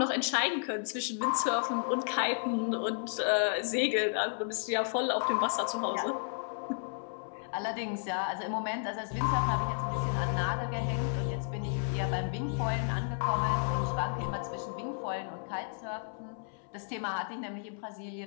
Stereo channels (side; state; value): right; silent; 56 dB below the other